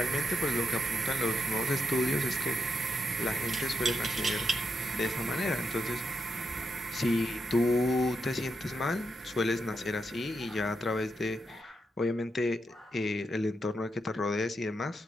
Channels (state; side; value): normal; both; correlation 0.83